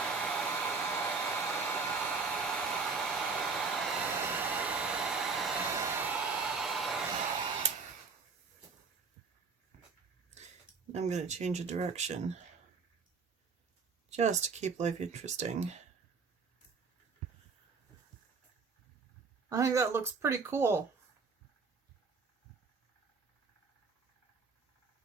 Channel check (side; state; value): left; quieter; 4.9 dB